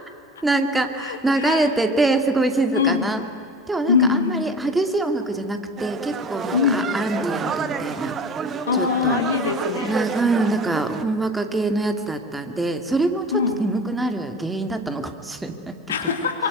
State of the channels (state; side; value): normal; both; correlation 0.36